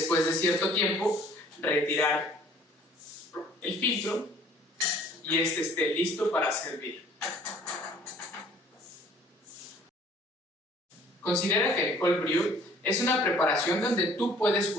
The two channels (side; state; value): both; normal; correlation 0.54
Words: de cierto tiempo, retirar el filtro y este esté listo para servir. Considera que el cold brew Es una preparación donde tú puedes